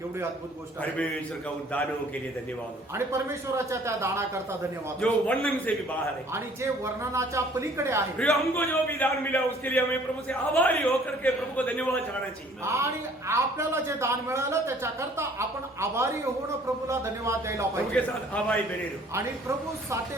अद्भुत गोष्ट आहे. परमेश्वर का उन दानों के लिए धन्यवाद हो, आणि परमेश्वराच्या त्या दानाकरता धन्यवाद. जो वर्णन से भी बाहर है। आणि जे वर्णनाच्या पलीकडे आहे. फिर हमको जो भी दान मिला उसके लिए हमें प्रभु से आभारी होकर के प्रभु को धन्यवाद चढ़ाना चाहिए। आणि आपल्याला जे दान मिळालं त्याच्याकरता आपण आभारी होऊन प्रभूला धन्यवाद द्यायला प्रभु के पाहिजे. साथ आभारी बने रहो। आणि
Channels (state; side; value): normal; both; correlation 0.56